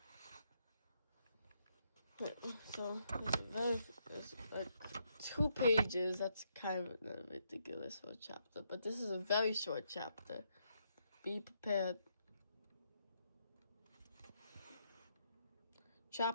So it's like 2 pages. That's kind of ridiculous for a chapter, but this is a very short chapter. Be prepared.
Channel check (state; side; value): inverted; both; correlation -0.77